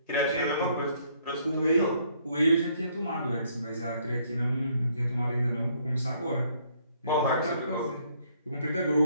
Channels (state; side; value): inverted; both; correlation -0.66